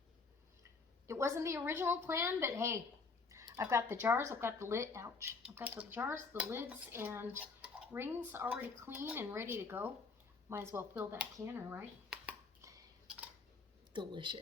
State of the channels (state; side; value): quieter; right; 4.4 dB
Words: It wasn't the original plan, but hey, I've got the jars, I've got the lid, ouch. I've got the jars, the lids, and rings already clean and ready to go. Might as well fill that canner, right?